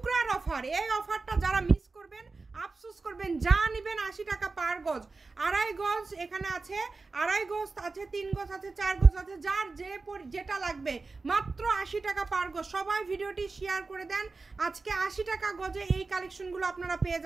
অফার। এই অফারটা যারা মিস করবেন আফসোস করবেন। যা নেবেন 80 টাকা পার গজ। 2.5 গজ এখানে আছে, 2.5 গজ আছে, 3 গজ আছে, 4 গজ আছে, যার যেটা লাগবে মাত্র 80 টাকা পার গজ। সবাই ভিডিওটি শেয়ার করে দেন। আজকে 80 টাকা গজে এই কালেকশনগুলো আপনারা পেয়ে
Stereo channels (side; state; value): left; quieter; 3.9 dB